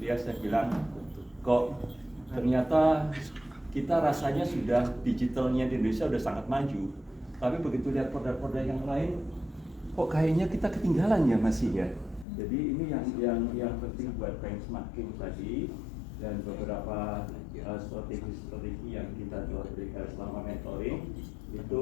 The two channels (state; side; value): drops out; right; at 12.2 s